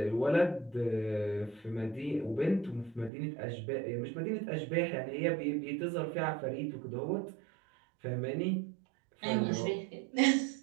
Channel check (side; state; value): left; drops out; at 3.1 s